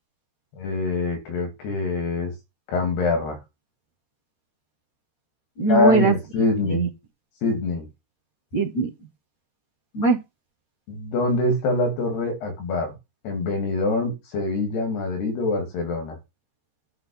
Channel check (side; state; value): right; late; 13 ms